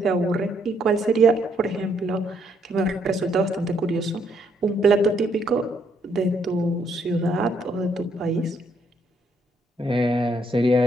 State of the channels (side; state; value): both; normal; correlation 0.71